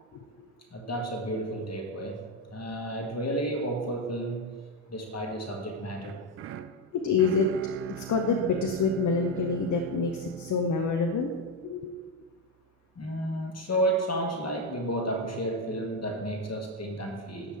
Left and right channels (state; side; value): normal; both; correlation 0.09